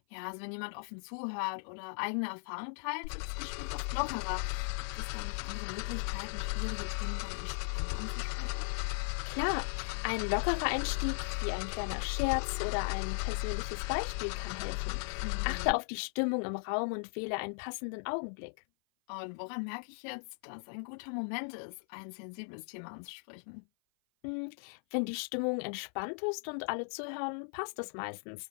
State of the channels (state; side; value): silent; right; 53 dB below the other